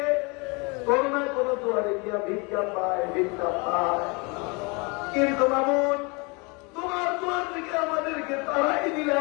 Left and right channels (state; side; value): quieter; right; 29.7 dB